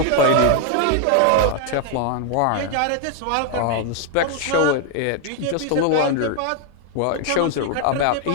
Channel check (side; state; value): both; different; correlation 0.00